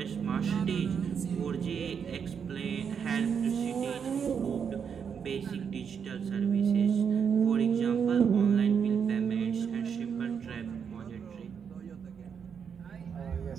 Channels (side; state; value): left; quieter; 7.0 dB